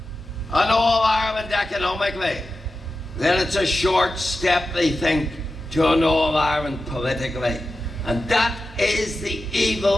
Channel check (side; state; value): both; normal; correlation 0.92